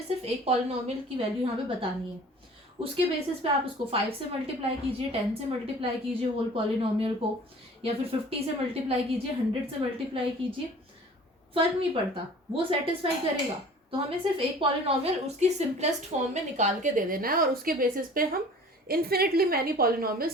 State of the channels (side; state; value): both; normal; correlation 0.46